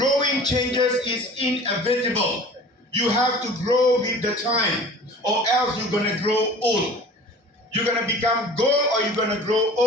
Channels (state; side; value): normal; both; correlation 0.43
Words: changes is inevitable. You have to grow with the time, or else you're going to grow old. You're going to become gold or you're going to grow